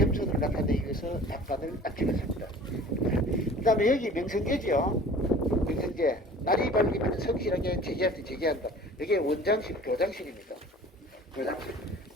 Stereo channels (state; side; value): normal; both; correlation 0.45